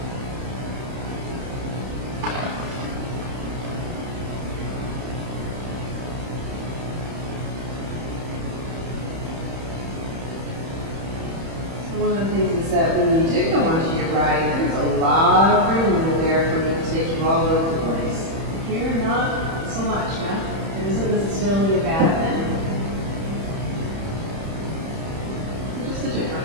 One of the things is that when you do go onto your right, there's a lot of room over there for me to take you all over the place. Here, not so much, huh? It isn't necessarily a bad thing. Just a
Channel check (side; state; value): left; late; 31 ms